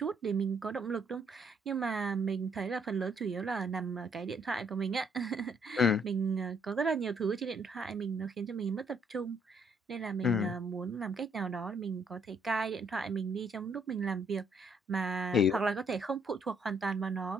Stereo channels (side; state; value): both; normal; correlation 0.68